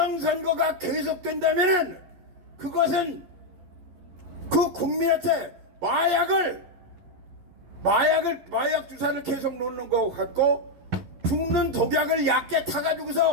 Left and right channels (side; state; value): left; late; 11 ms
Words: 계속된다면은 그것은 그 국민한테 마약 주사를 계속 놓는 것 같고 죽는 독약을 얕게